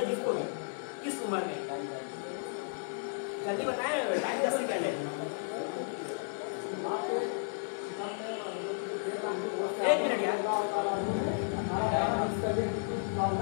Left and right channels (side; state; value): right; silent; digital silence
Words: जिसको भी किस उम्र में? जल्दी बताएं, टाइम 10 सेकंड है। 1 मिनट यार।